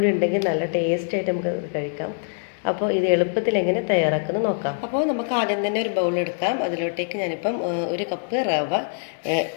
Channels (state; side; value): silent; right; digital silence